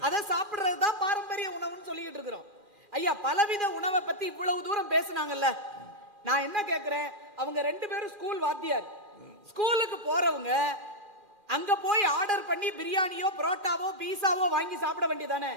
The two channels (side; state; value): left; late; 2.1 ms